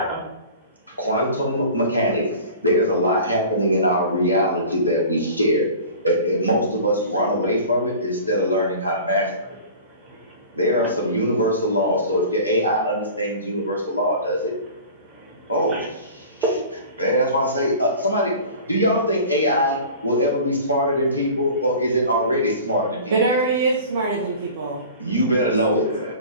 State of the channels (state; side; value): inverted; both; correlation -0.40